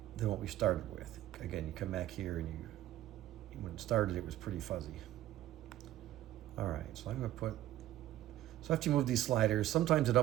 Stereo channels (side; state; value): left; quieter; 13.7 dB